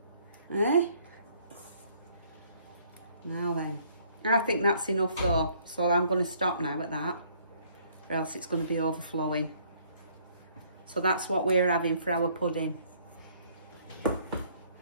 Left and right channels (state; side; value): inverted; both; correlation -0.63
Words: Eh? Now then. I think that's enough though, so I'm going to stop now at that, or else it's going to be overflowing. So that's what we're having for our pudding.